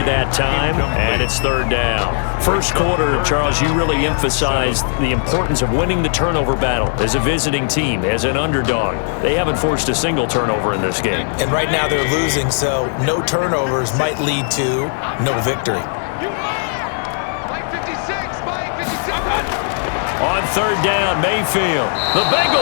that time, and it's 3rd down. First quarter, Charles, you really emphasized the importance of winning the turnover battle as a visiting team, as an underdog. They haven't forced a single turnover in this game. And right now they're losing, so no turnovers might lead to no victory. On third down, Mayfield. The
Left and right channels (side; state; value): right; silent; digital silence